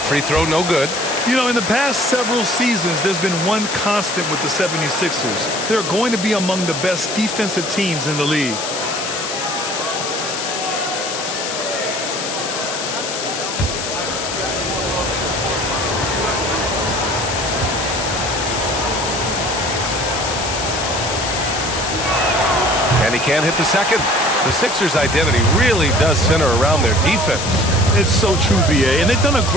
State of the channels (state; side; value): noise; left; hiss, 5 dB below the sound